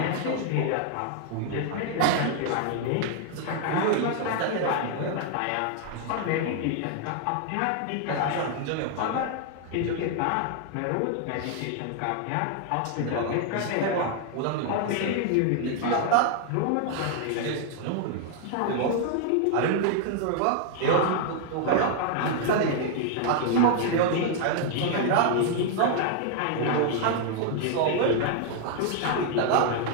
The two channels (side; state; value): both; different; correlation 0.00